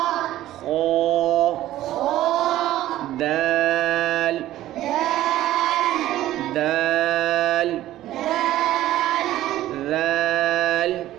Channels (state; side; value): quieter; left; 14.3 dB